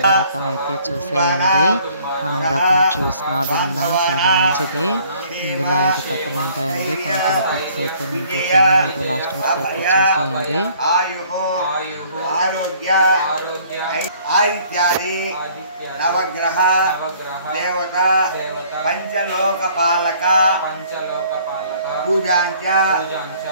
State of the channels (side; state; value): both; inverted; correlation -0.58